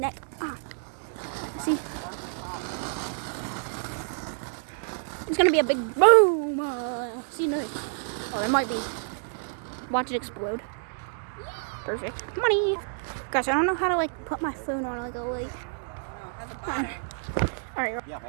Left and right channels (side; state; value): left; silent; digital silence